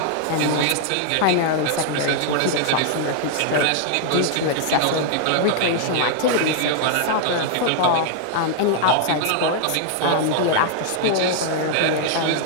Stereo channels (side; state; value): both; different; correlation 0.00